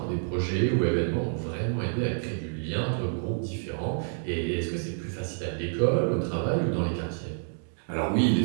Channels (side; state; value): left; silent; digital silence